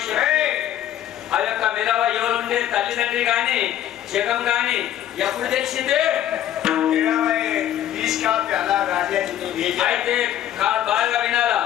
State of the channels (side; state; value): right; quieter; 11.8 dB